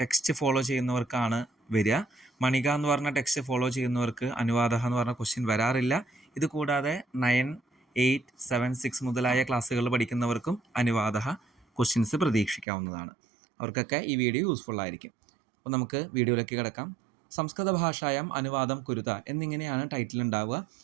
ഫോളോ ചെയ്യുന്നവർക്കാണ് വരിക. മണിക എന്ന് പറഞ്ഞ ടെക്സ്റ്റ് ഫോളോ ചെയ്യുന്നവർക്ക് അനുവാദ എന്ന് പറഞ്ഞ ക്വസ്റ്റ്യൻ വരാറില്ല. ഇത് കൂടാതെ 9, 8, 7, 6 മുതലായ ക്ലാസ്സുകൾ പഠിക്കുന്നവർക്കും അനുവാദ ക്വസ്റ്റ്യൻസ് പ്രതീക്ഷിക്കാവുന്നതാണ്. അവർക്കൊക്കെ ഈ വീഡിയോ യൂസ്ഫുൾ ആയിരിക്കും. അപ്പോൾ നമുക്ക് വീഡിയോയിലേക്ക് കിടക്കാം. സംസ്കൃത ഭാഷായം അനുവാദം കുരുത എന്നിങ്ങനെയാണ് ടൈറ്റിൽ ഉണ്ടാവുക.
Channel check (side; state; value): left; drops out; at 12.7 s